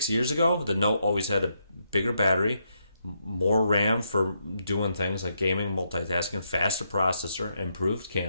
years ago, the Note always had a bigger battery, more RAM for doing things like gaming, multitasking, faster processor, improved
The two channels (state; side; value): inverted; both; correlation -0.79